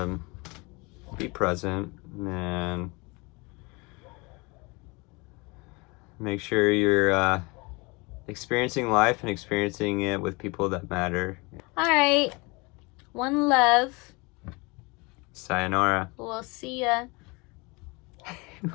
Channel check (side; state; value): right; quieter; 27.1 dB